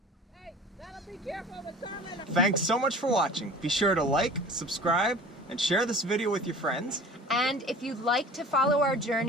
Thanks so much for watching. Be sure to like, subscribe, and share this video with your friends. And if you'd like to follow our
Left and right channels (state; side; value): normal; both; correlation 0.42